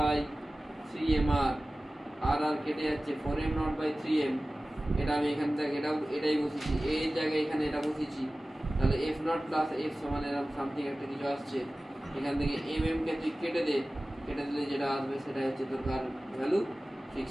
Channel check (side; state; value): both; normal; correlation 0.97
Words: 3mr। আর আর কেটে যাচ্ছে 4m নট বাই 3m। এটা আমি এখান থেকে এটাই বসেছি, এর জায়গায় এখানে এটা বসেছি। তাহলে f নট প্লাস f সমান এরকম সামথিং একটা কিছু আসছে। এখান থেকে mm কে তুই কেটে দিলে যেটা আসবে সেটা হচ্ছে তোর কার ভ্যালু?